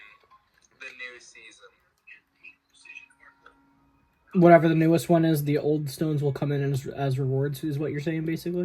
season. Whatever the newest one is, the old stones will come in as rewards, is what you're saying,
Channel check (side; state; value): both; identical; correlation 1.00